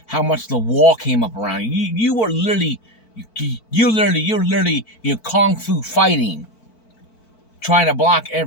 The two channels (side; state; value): right; late; 4.5 ms